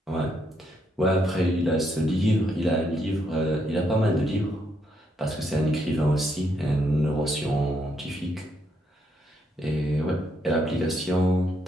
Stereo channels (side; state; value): both; normal; correlation 0.76